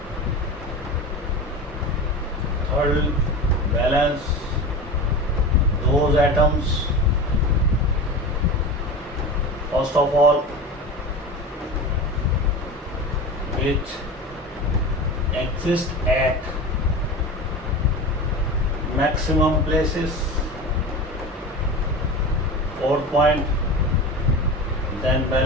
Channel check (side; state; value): both; normal; correlation 0.29